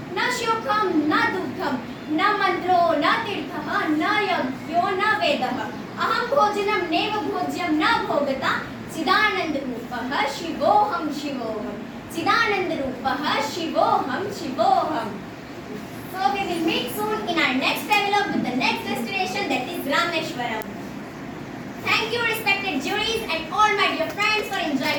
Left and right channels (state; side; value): identical; both; correlation 1.00